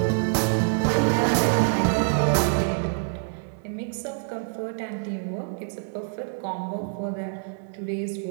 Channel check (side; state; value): left; silent; 61 dB below the other